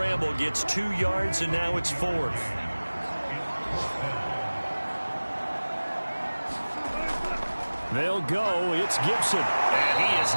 gets 2 yards, and now it's 4th. They'll go. It's Gibson. And he is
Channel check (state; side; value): inverted; both; correlation -1.00